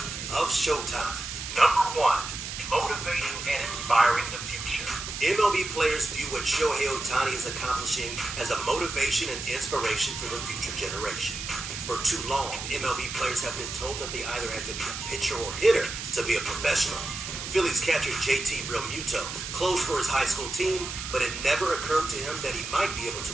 of Showtime." Number 1. Motivating and inspiring the future. MLB players view what Shohei Otani is accomplishing as a motivation and inspiration for the future generation. For too long, MLB players have been told that they either had to be a pitcher or hitter to be a professional. Phillies catcher JT Realmuto closed for his high school team, but it never occurred to him that he might be able to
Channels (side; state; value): right; noise; hiss, 7 dB below the sound